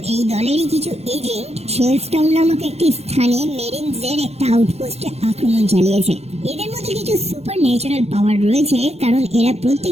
এই দলেরই কিছু এজেন্ট শেলস্টাউন নামক একটি স্থানে মেরিনসদের একটা আউটপোস্টে আক্রমণ চালিয়েছে। এদের মধ্যে কিছু সুপার ন্যাচারাল পাওয়ার রয়েছে, কারণ এরা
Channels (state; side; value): late; left; 0.31 ms